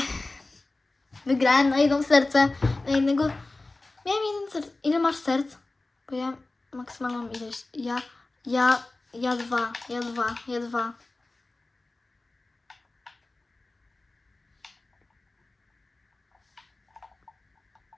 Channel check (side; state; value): right; quieter; 3.1 dB